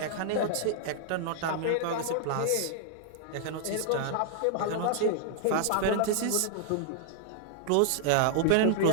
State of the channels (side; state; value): both; different; correlation -0.01